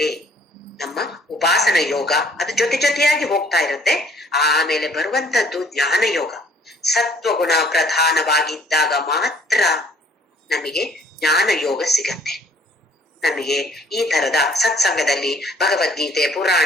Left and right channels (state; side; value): normal; both; correlation 0.59